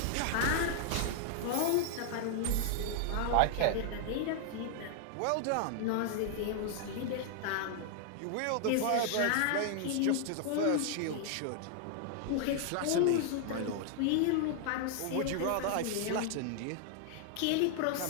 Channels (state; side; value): different; both; correlation 0.00